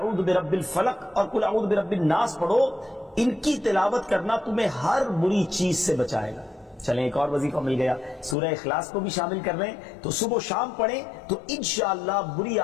برب الفلق اور قل اعوذ برب الناس پڑھو، ان کی تلاوت کرنا تمہیں ہر بری چیز سے بچائے گا۔ چلیں ایک اور وظیفہ مل گیا، سورہ اخلاص کو بھی شامل کر رہے ہیں، تو صبح و شام پڑھیں تو انشاءاللہ بری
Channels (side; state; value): right; drops out; at 8.3 s